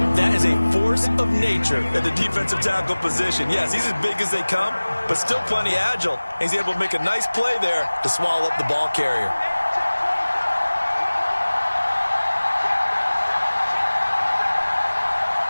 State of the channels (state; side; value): inverted; both; correlation -1.00